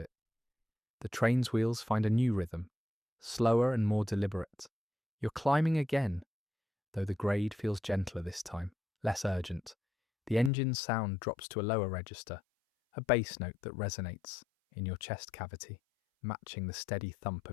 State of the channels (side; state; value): right; drops out; at 10.5 s